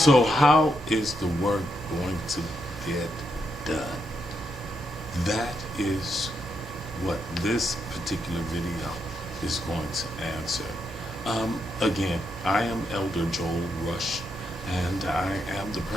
how is the work going to get done? That is what this particular video is going to answer. Again, I am Elder Joel Rush, and I am the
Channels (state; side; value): normal; both; correlation 0.81